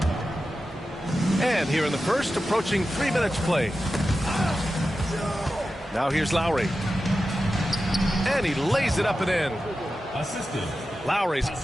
And here in the first, approaching 3 minutes played. Now here's Lowry. And he lays it up and in. Assisted. Lowry's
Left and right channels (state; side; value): normal; both; correlation 0.92